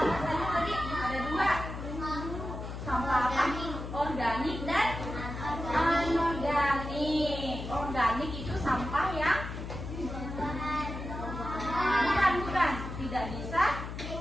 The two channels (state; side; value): noise; left; hum, 7 dB below the sound